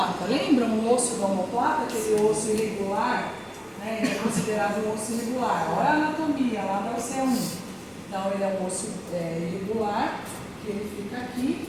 Lembram o osso da omoplata, aquele osso irregular? Né? Ele é considerado um osso irregular. Olha a anatomia lá da OC1. Então ele é um osso irregular, que ele fica aqui.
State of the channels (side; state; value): both; identical; correlation 1.00